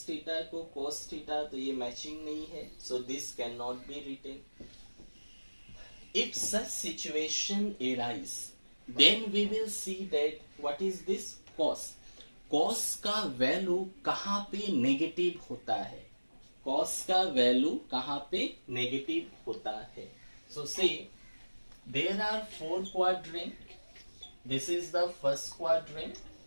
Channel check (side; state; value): both; inverted; correlation -1.00